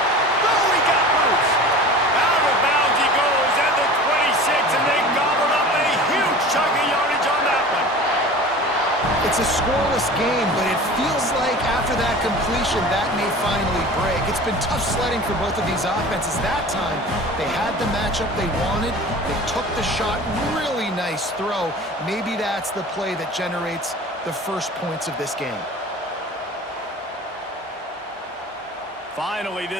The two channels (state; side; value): normal; both; correlation 0.39